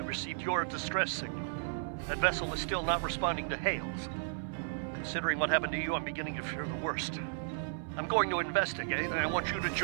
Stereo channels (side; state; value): left; silent; 55 dB below the other